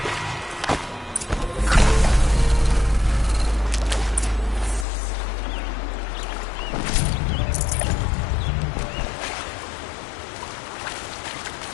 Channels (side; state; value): right; drops out; at 4.9 s